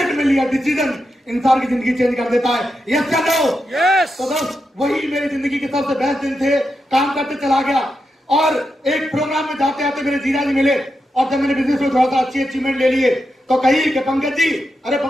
में लिया डिसीजन इंसान की जिंदगी चेंज कर देता है। यस या नो? तो दोस्त वही मेरी जिंदगी के सबसे बेस्ट दिन थे। काम करते चला गया और एक प्रोग्राम में जाते आते मेरे जीजा जी मिले, और जब मैंने बिजनेस में थोड़ा सा अच्छी अचीवमेंट ले लिए तो कही कि पंकज जी, अरे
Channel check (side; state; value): both; normal; correlation 0.87